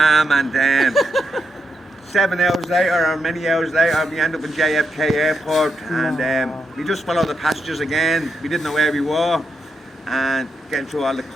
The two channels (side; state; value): both; normal; correlation 0.82